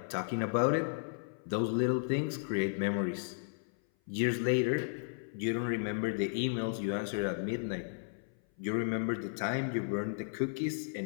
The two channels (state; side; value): silent; right; 55 dB below the other